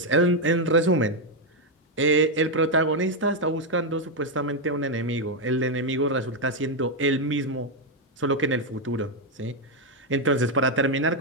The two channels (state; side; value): normal; both; correlation 0.03